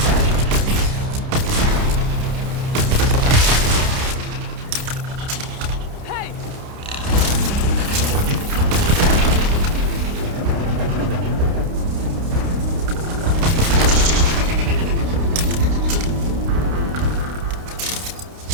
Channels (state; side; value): late; left; 29 ms